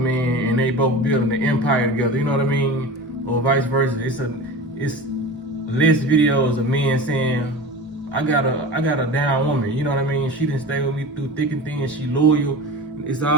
and they both building an empire together, you know what I mean? Or vice versa. It's less videos of men saying, I got a down woman, you know what I mean? She didn't stay with me through thick and thin, she loyal. It's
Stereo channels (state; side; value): normal; both; correlation 0.32